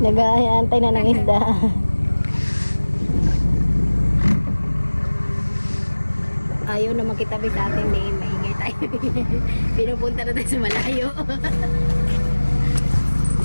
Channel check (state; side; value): inverted; both; correlation -1.00